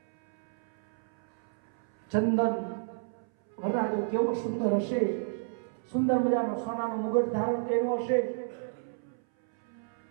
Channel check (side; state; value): left; silent; 57 dB below the other